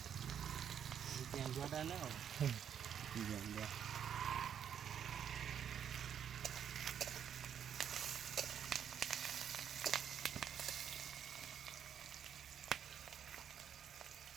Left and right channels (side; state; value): left; quieter; 8.7 dB